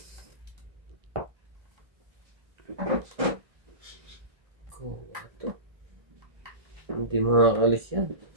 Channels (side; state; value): left; late; 1.7 ms